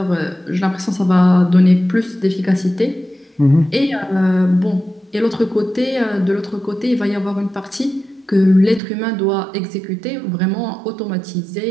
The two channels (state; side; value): drops out; left; at 8.8 s